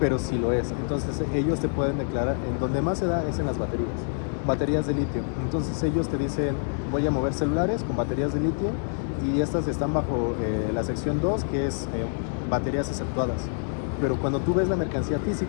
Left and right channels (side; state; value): right; silent; 61 dB below the other